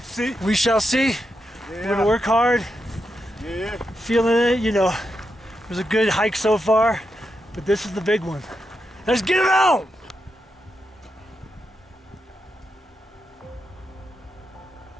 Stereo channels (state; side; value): normal; both; correlation 0.85